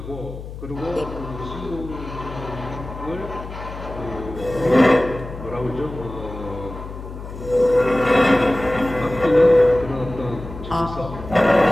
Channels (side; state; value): left; noise; hum, 11 dB below the sound